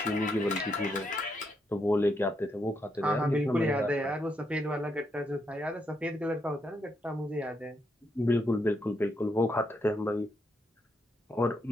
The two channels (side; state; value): both; normal; correlation 0.79